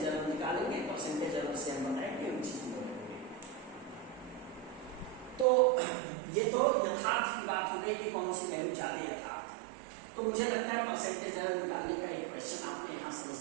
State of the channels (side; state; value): left; drops out; at 5.5 s